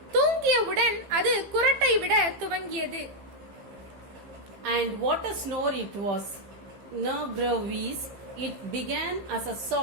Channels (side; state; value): left; late; 15 ms